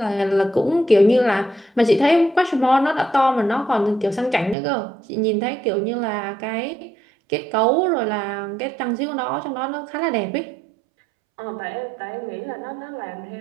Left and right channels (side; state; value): left; drops out; at 4.5 s